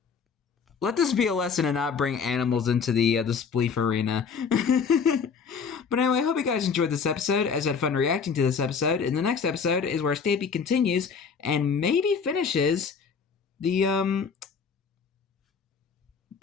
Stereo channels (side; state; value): right; quieter; 6.0 dB